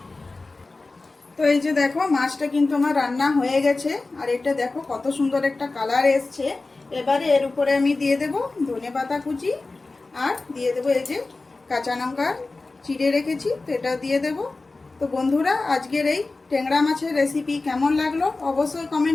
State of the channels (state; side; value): quieter; right; 3.4 dB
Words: তো এই যে দেখো মাছটা কিন্তু আমার রান্না হয়ে গেছে, আর এটা দেখো কত সুন্দর একটা কালার এসছে। এবারে এর উপরে আমি দিয়ে দেব ধনেপাতা কুচি, আর দিয়ে দেব এই যে কাঁচা লঙ্কা চিড়ে রেখেছি, তো এটা দিয়ে দেব। তো বন্ধুরা, আজকের এই ট্যাংরা মাছের রেসিপি কেমন লাগলো অবশ্যই